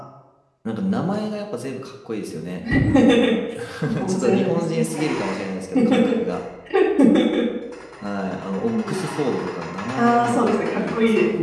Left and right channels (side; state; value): both; identical; correlation 1.00